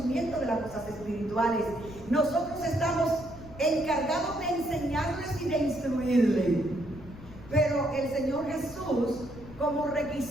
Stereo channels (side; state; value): left; noise; rumble, 17 dB below the sound